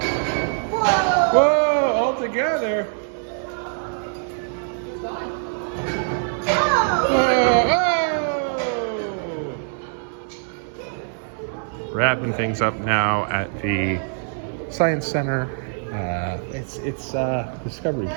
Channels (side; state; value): left; silent; digital silence